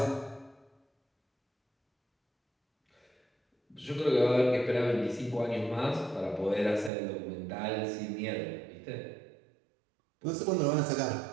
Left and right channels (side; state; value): left; drops out; at 6.9 s